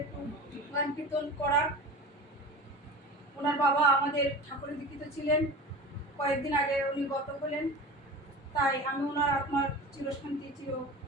একটু গান কীর্তন করার। ওনার বাবা আমাদের ঠাকুরের দীক্ষিত ছিলেন, কয়েকদিন আগে উনি গত হলেন। তাই আমি ওনার আত্মার চিরশান্তি চির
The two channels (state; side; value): normal; both; correlation 0.33